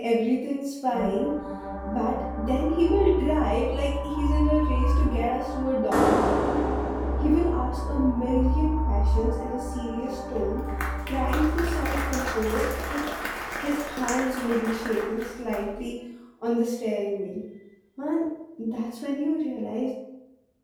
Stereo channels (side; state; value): both; identical; correlation 1.00